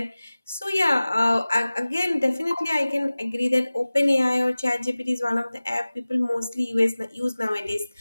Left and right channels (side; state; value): both; inverted; correlation -0.98